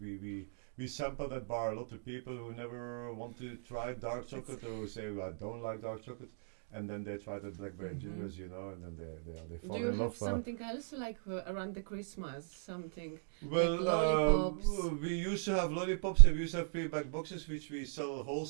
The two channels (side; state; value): left; silent; digital silence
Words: We sample that bar a lot of people who never want to try dark chocolate or who say, well, I don't like dark chocolate, and then they try the blackberry gingers, you know, and then they fall Do you in love. have something else like around the Christmas? Something well, like lollipops? we used to have lollipops, and we used to have pre-packed boxes, which we sell